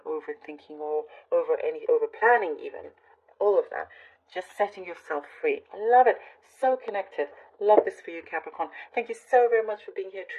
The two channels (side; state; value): both; identical; correlation 1.00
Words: overthinking or over planning even. All of that. Just setting yourself free. I love it. So connected. Love this for you, Capricorn. Thank you so very much for being here.